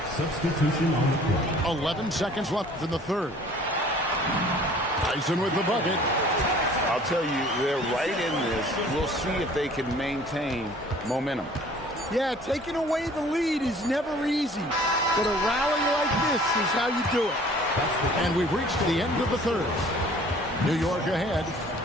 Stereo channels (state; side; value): normal; both; correlation 0.51